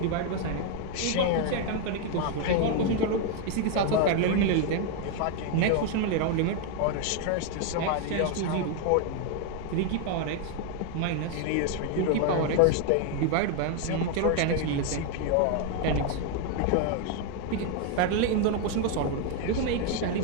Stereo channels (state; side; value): different; both; correlation 0.01